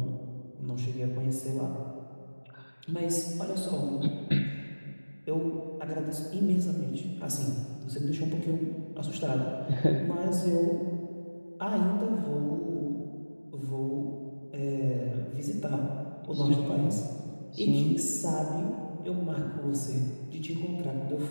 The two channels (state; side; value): inverted; both; correlation -1.00